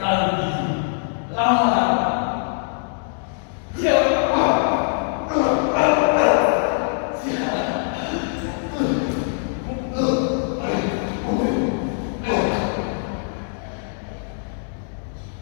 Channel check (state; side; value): silent; right; digital silence